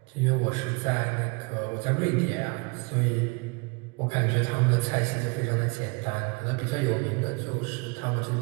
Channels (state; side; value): quieter; left; 30.1 dB